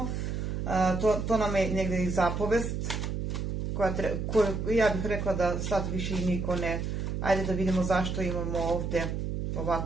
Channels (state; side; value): noise; right; hum, 2 dB below the sound